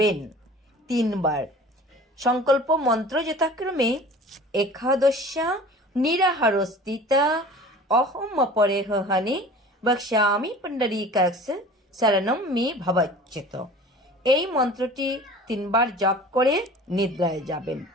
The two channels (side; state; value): both; normal; correlation 0.43